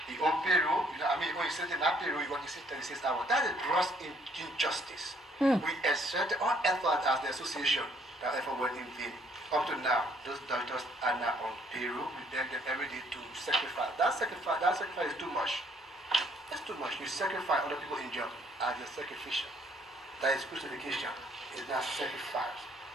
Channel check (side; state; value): both; normal; correlation 0.65